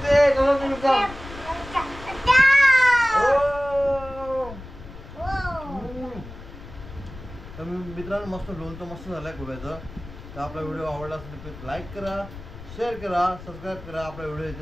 कसं लागते तर मित्रांनो मस्त लोणचं मस्त झालंय गोव्याचं. तर आपला व्हिडिओ आवडला असेल तर प्लीज लाईक करा, शेअर करा, सबस्क्राईब करा. आपला व्हिडिओ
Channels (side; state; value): left; noise; rumble, 15 dB below the sound